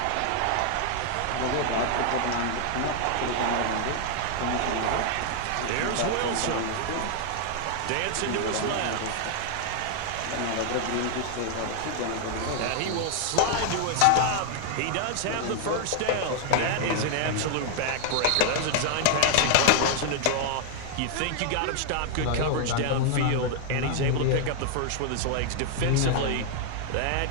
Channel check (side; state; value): both; different; correlation 0.00